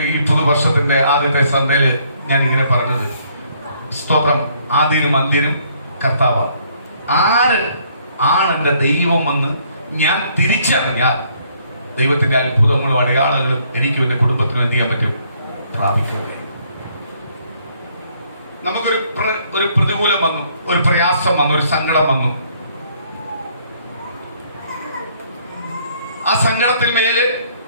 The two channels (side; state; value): both; inverted; correlation -0.66